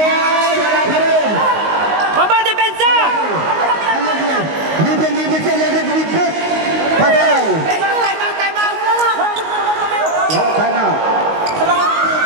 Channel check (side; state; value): left; late; 19 ms